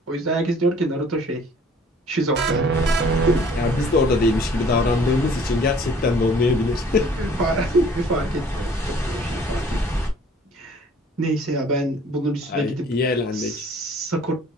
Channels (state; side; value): normal; both; correlation 0.54